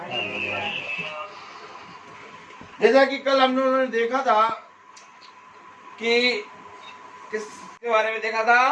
जैसा कि कल हम लोगों ने देखा था कि किसके बारे में देखा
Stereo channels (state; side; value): identical; both; correlation 1.00